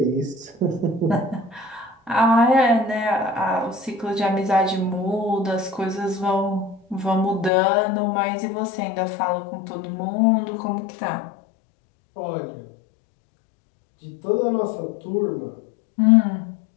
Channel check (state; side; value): drops out; right; at 7.5 s